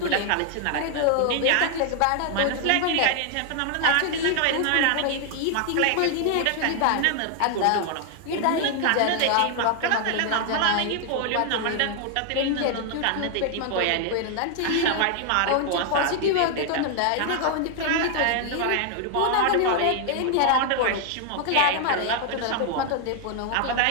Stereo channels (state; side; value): different; both; correlation 0.00